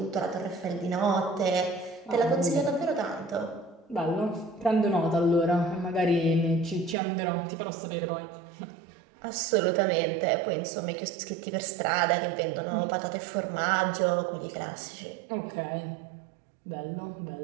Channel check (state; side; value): drops out; left; at 7.0 s